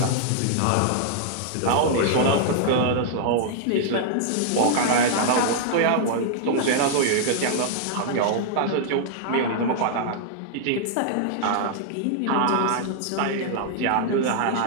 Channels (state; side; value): different; both; correlation -0.01